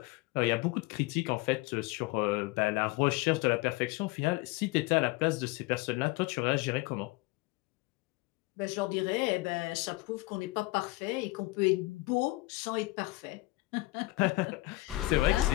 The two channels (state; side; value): quieter; right; 20.7 dB